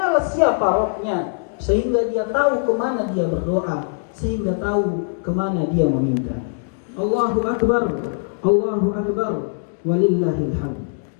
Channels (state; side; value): silent; right; digital silence